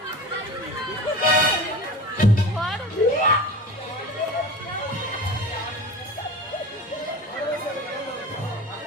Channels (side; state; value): both; normal; correlation 0.34